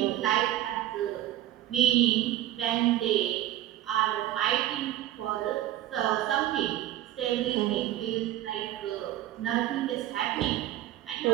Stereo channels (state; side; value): quieter; left; 13.6 dB